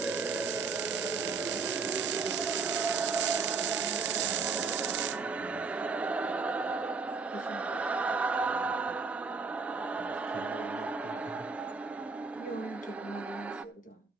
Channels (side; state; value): left; quieter; 4.8 dB